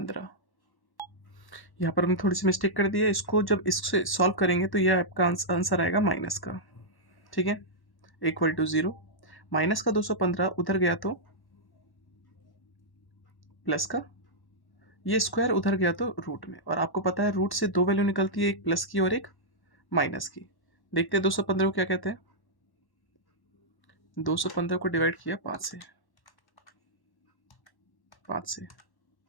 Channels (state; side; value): late; right; 1.1 ms